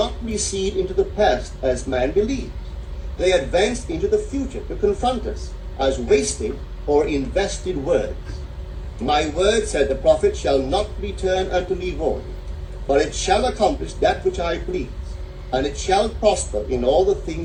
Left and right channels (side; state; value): both; identical; correlation 1.00